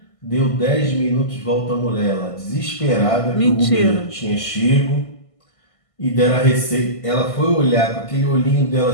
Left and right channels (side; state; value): right; late; 1.5 ms